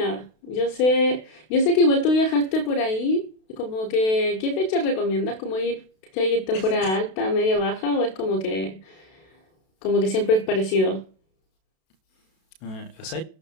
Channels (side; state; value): right; late; 32 ms